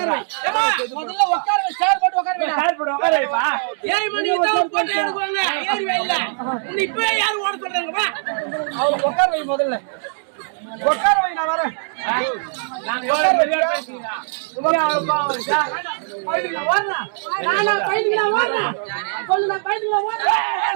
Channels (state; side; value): silent; left; digital silence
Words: வை, சேர் போட்டு உட்கார வை. உட்கார வைப்பா 7 மணிக்கு தான் போட்டு எடுப்பாங்க. ஏறி வைல இப்போ யார் ஓட சொல்றாங்க வா. அவர் உட்கார வை முதல்ல. உட்கார வை, நான் வரேன். உட்கார வை. நானா பையன்ல ஓடுறேன். சொல்லு நான் பையன்ல ஓடுறேன்.